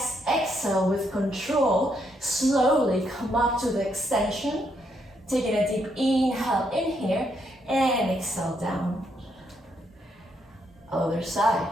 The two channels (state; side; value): normal; both; correlation 0.76